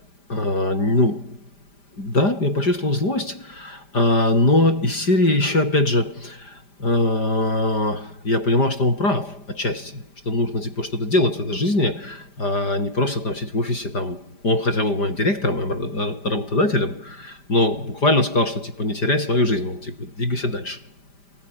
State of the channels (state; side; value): late; right; 5.0 ms